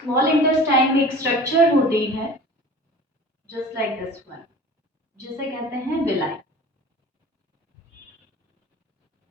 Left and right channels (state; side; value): normal; both; correlation 0.41